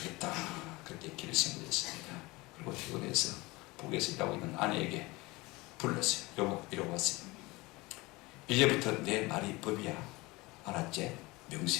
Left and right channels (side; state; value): right; quieter; 22.6 dB